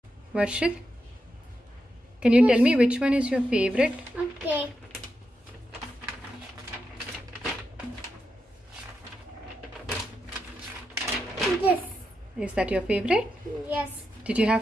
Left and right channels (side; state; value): both; normal; correlation 0.86